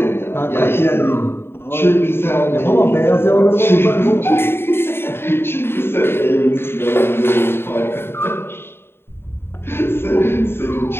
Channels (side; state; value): right; late; 0.11 ms